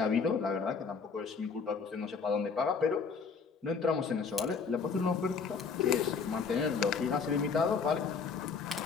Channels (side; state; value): right; quieter; 5.4 dB